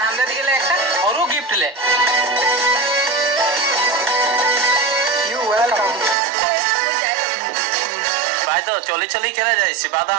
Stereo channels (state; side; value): drops out; left; at 6.2 s